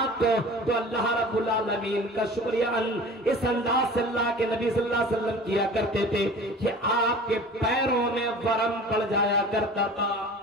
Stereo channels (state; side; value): normal; both; correlation 0.41